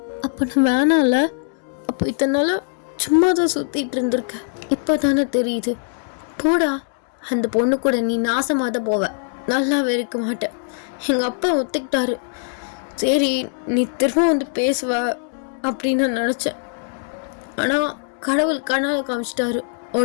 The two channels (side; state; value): right; silent; digital silence